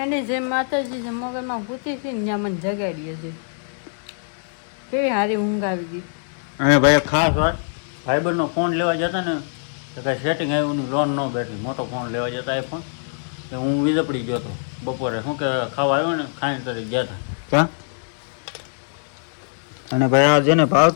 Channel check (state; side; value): silent; right; digital silence